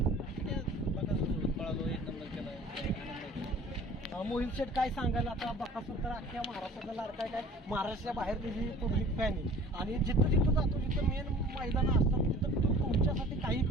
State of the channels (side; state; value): both; normal; correlation 0.46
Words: बकासूर पळालो, एक नंबर केला. मोहित शेठ काय सांगाल? आता बकासूर तर अख्ख्या महाराष्ट्राचा लाडका काय महाराष्ट्राच्या बाहेर त्याची पब्लिक फॅन आहे आणि जिथं जिथं जातो जिथं मेन मैदानं असतात तिथं तो तुमच्यासाठी काही